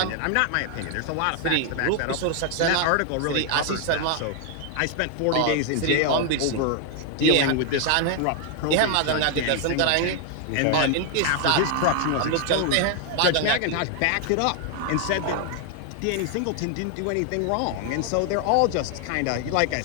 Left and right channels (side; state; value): both; different; correlation 0.00